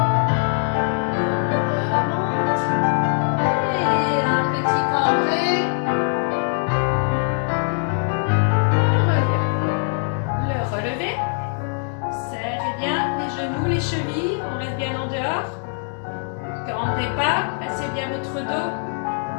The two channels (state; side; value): silent; right; 61 dB below the other